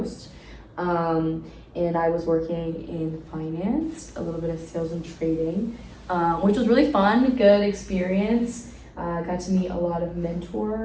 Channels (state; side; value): identical; both; correlation 1.00